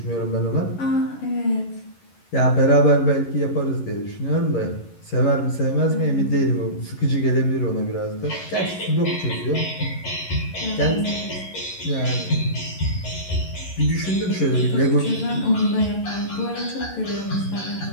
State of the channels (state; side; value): late; right; 11 ms